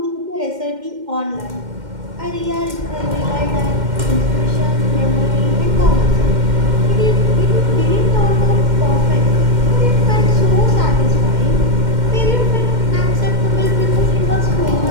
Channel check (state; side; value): late; left; 2.1 ms